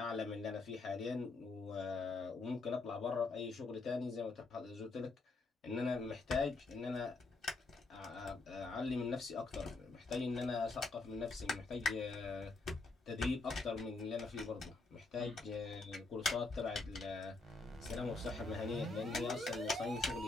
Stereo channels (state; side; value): quieter; right; 3.5 dB